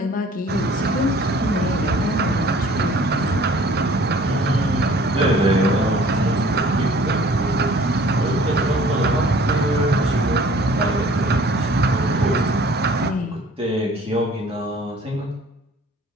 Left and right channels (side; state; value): both; normal; correlation 0.52